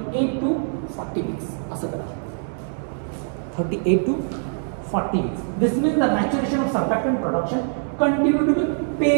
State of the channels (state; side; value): silent; left; 63 dB below the other